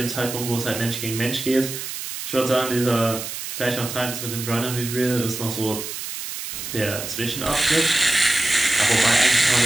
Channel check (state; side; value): noise; right; hiss, 7 dB below the sound